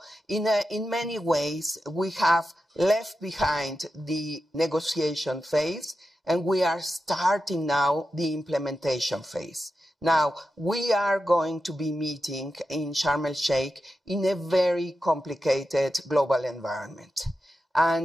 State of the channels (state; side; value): normal; both; correlation 0.90